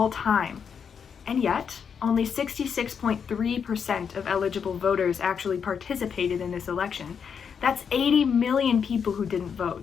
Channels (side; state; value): right; quieter; 6.9 dB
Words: time. And yet, only 66.3% of eligible voters actually participated in this election. That's 80 million people who didn't